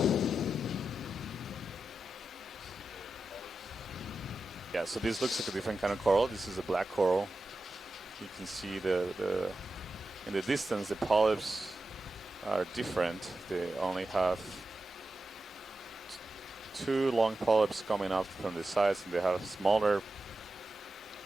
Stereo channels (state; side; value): normal; both; correlation 0.91